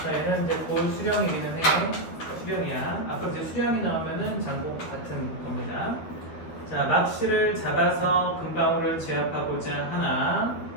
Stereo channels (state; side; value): late; right; 12 ms